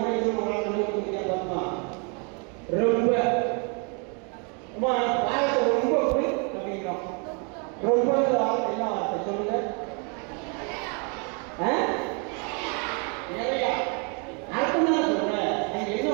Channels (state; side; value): quieter; left; 35.8 dB